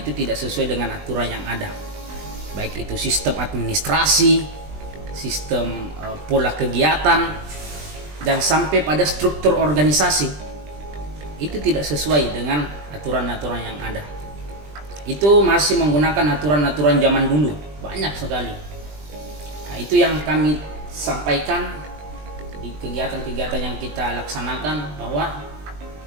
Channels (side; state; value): left; late; 20 ms